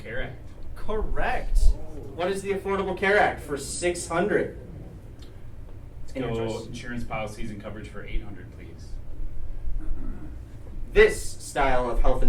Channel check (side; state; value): both; identical; correlation 1.00